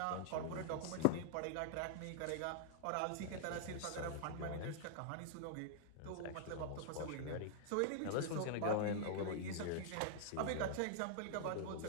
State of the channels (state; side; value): different; both; correlation -0.01